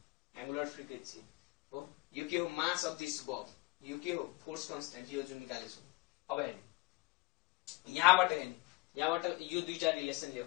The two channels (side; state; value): right; quieter; 23.8 dB